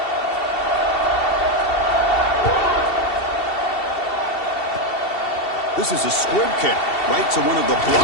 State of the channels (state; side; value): late; right; 2.7 ms